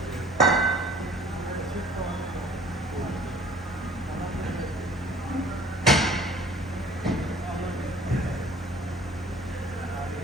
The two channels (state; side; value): normal; both; correlation 0.51